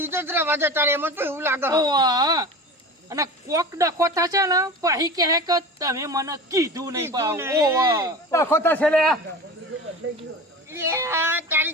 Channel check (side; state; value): both; normal; correlation 0.33